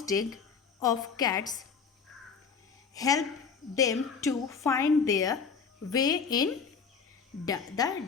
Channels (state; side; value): quieter; right; 5.8 dB